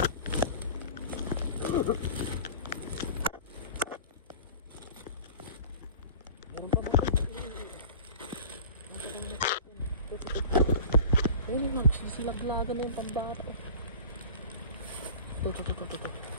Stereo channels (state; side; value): inverted; both; correlation -0.39